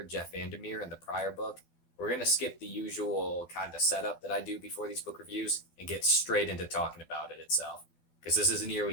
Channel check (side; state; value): right; late; 12 ms